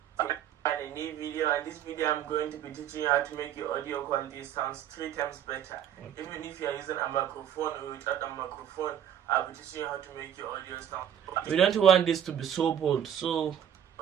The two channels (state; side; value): quieter; left; 9.7 dB